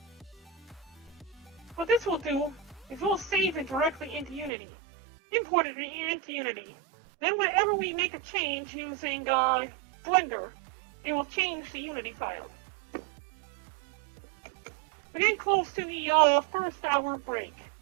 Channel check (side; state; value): left; drops out; at 4.5 s